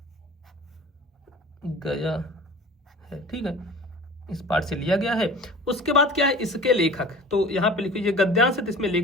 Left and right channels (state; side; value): normal; both; correlation 0.42